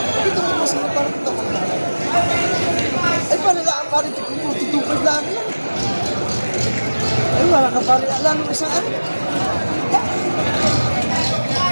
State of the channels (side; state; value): both; inverted; correlation -1.00